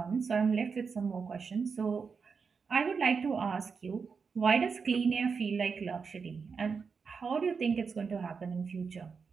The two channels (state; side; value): quieter; left; 5.5 dB